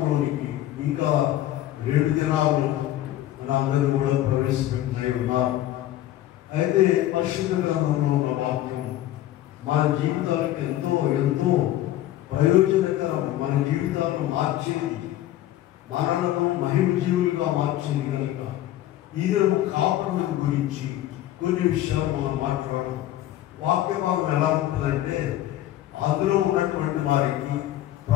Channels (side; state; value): right; quieter; 13.8 dB